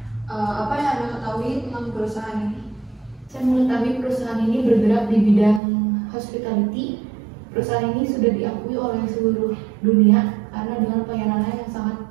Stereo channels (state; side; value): drops out; left; at 5.6 s